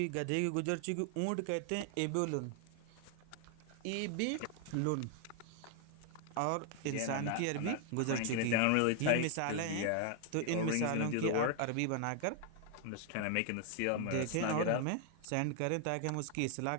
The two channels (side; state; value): both; different; correlation 0.00